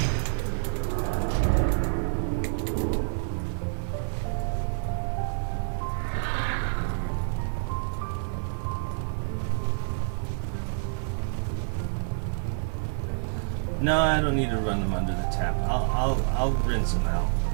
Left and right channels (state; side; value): silent; left; 59 dB below the other